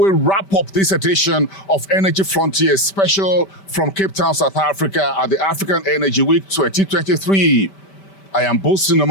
wrap up this edition of Energy Frontiers special from Cape Town, South Africa at the African Energy Week 2023. I am Boason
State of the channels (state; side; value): late; right; 5.1 ms